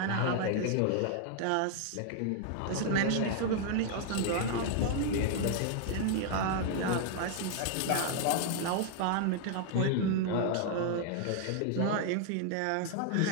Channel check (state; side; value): different; both; correlation 0.00